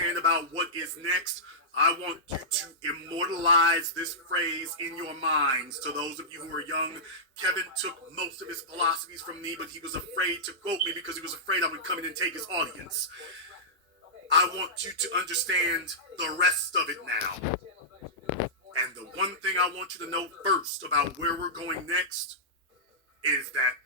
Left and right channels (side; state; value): both; normal; correlation -0.14